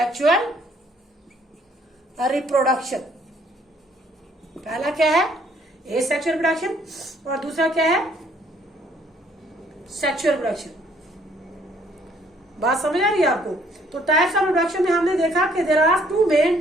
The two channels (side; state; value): both; normal; correlation 0.64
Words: reproduction। पहला क्या है asexual reproduction और दूसरा क्या है sexual reproduction। बात समझ आ रही है आपको। तो टाइप्स ऑफ रिप्रोडक्शन में हमने देखा कि there are two main